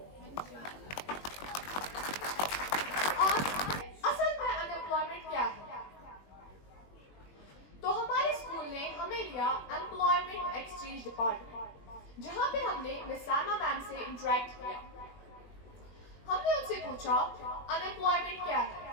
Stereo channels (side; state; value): right; late; 21 ms